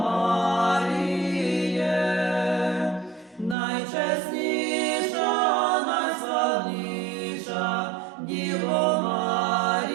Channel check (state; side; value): drops out; left; at 3.6 s